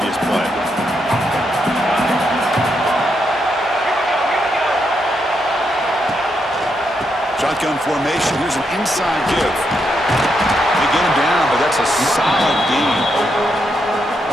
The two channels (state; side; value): normal; both; correlation 0.80